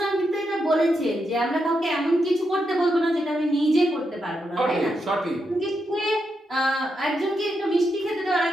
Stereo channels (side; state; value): both; normal; correlation 0.84